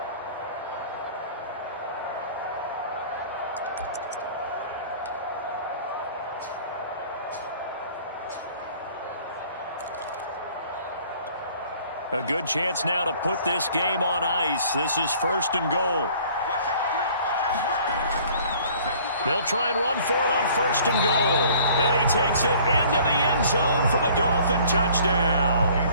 A good chance now to put this game on ice. This is 1st and goal. They'll try and run for it on 1st and goal. And he takes it into the end zone for the Dolphin touchdown.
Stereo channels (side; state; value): both; inverted; correlation -0.53